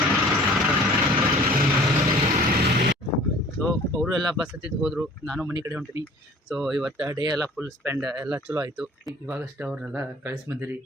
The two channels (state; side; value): normal; both; correlation 0.49